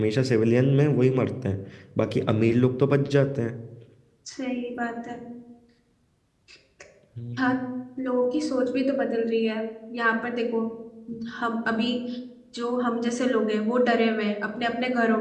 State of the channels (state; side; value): identical; both; correlation 1.00